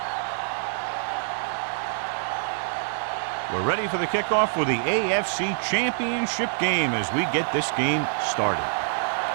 We're ready for the kickoff for the AFC Championship game as we get this game started.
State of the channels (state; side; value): silent; left; digital silence